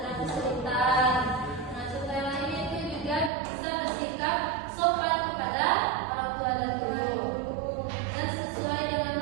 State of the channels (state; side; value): drops out; left; at 3.3 s